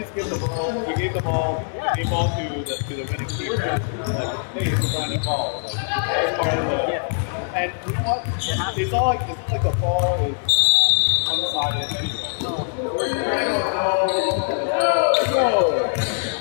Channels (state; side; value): silent; right; 64 dB below the other